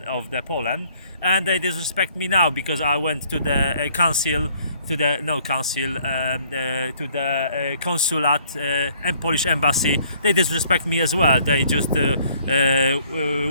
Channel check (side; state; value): both; inverted; correlation -0.62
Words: of the Poland, and they disrespect me now because I went to the council, to the to the consulate and Polish embassy. They disrespect me as well. They just